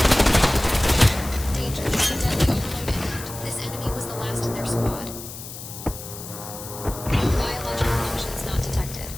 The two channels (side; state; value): left; noise; hiss, 12 dB below the sound